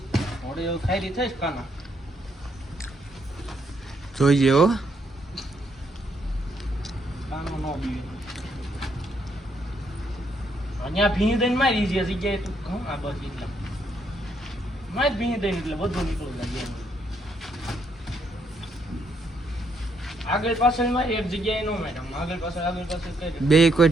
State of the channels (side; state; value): both; normal; correlation 0.73